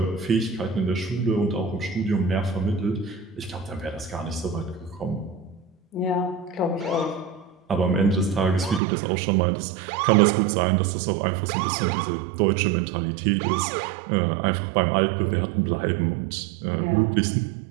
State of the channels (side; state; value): left; drops out; at 8.8 s